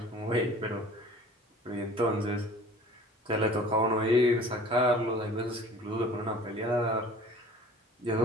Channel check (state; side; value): normal; both; correlation 0.46